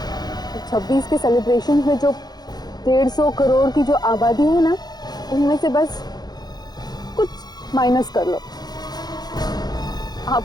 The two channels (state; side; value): late; right; 0.19 ms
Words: 26 के सेलिब्रेशन में जो 150 करोड़ की जो आबादी है ना, उनमें से बस कुछ माइनस कर लो।